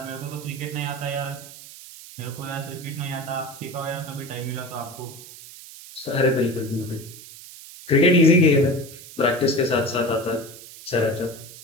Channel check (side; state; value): right; noise; hiss, 16 dB below the sound